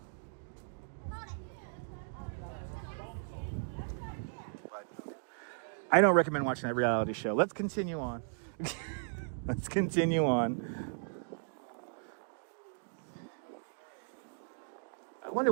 But I don't recommend watching that reality show. Let's continue on. Let's continue on. I wonder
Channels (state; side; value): silent; left; digital silence